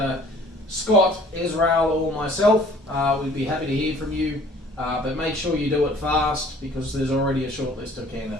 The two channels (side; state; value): both; normal; correlation 0.53